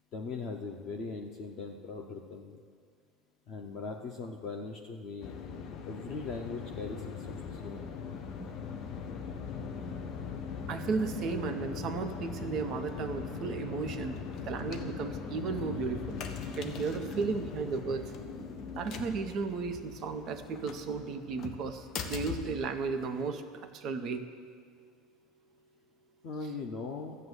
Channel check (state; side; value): normal; both; correlation 0.40